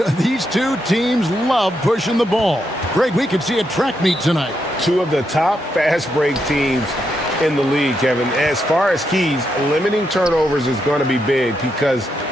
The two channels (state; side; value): normal; both; correlation 0.81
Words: These two teams love pushing the ball. Greg, we could see a track meet tonight. Two of the top fast break teams in the league, Kevin. As far as keys, limiting turnovers is going to be big because